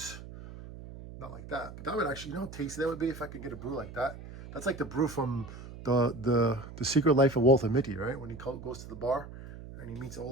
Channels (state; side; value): noise; right; hum, 13 dB below the sound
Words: Not like that, but that would actually, you know how tasty that would be if I could get a brew like that. That's like the brew from the Secret Life of Walter Mitty, right? When he goes to the bar and he meets